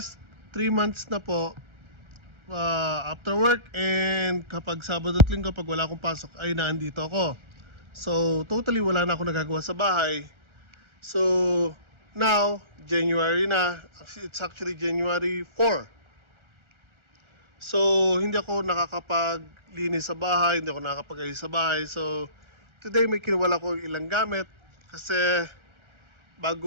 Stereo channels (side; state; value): left; late; 1.4 ms